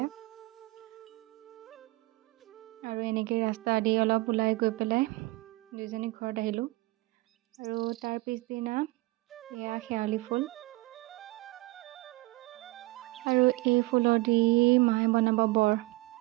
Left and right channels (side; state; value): left; quieter; 21.3 dB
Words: আৰু এনেকৈ ৰাস্তা দি অলপ ওলাই গৈ পেলাই দুইজনী ঘৰত আহিলোঁ আৰু তাৰ পিছদিনা এয়া শেৱালি ফুল আৰু এই ফুলৰ দি মায়ে বনাব বৰ